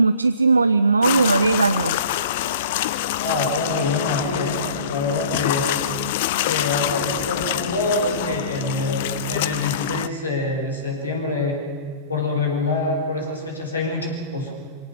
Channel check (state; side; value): inverted; both; correlation -0.44